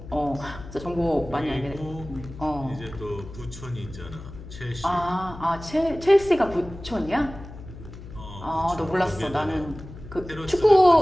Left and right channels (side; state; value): left; noise; hum, 14 dB below the sound